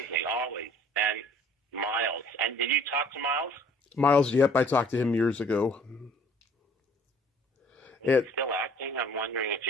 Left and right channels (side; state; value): both; normal; correlation 0.54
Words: always. And Miles. And did you talk to Miles? Miles, yep, I talked to him years ago. Is he still acting? I'm wondering if